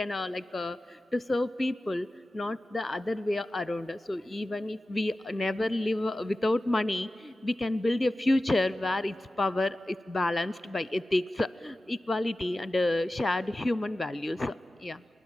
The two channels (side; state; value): both; normal; correlation 0.95